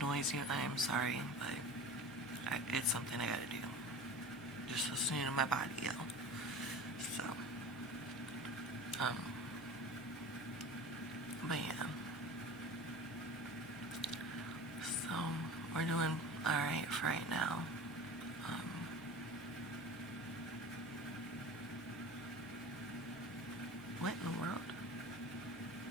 you, I am sorry, but it's something I gotta do. Just listening to my body, yo. So, but yeah. So, we're doing alright for right now. What in the world?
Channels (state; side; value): normal; both; correlation 0.35